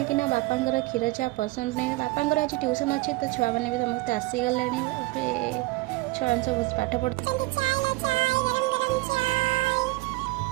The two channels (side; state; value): left; quieter; 20.7 dB